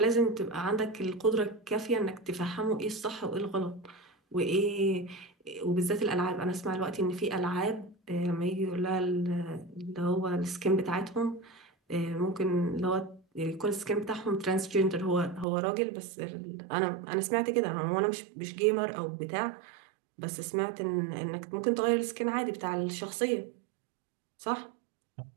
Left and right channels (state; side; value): drops out; left; at 15.5 s